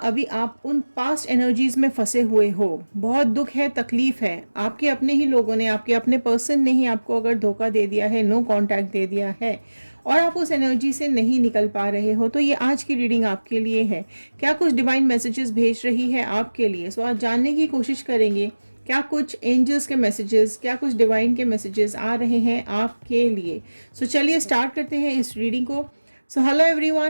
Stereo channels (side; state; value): both; inverted; correlation -1.00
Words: आप उन पास्ट एनर्जीज़ में फंसे हुए हो। बहुत दुख है, तकलीफ़ है। आपके अपने ही लोगों ने, आपके अपने पर्सन ने ही आपको अगर धोखा दे दिया है, नो कांटेक्ट दे दिया है और आप उस एनर्जी से नहीं निकल पा रहे हो, तो ये आज की रीडिंग आपके लिए है। क्या कुछ डिवाइन मैसेजेस भेज रही है आपके लिए? सो आज जानने की कोशिश करेंगे क्या कुछ एंजल्स के मैसेजेस, क्या कुछ डिवाइन के मैसेजेस आ रहे हैं आपके लिए। सो चलिए स्टार्ट करते हैं इस रीडिंग को। सो हेलो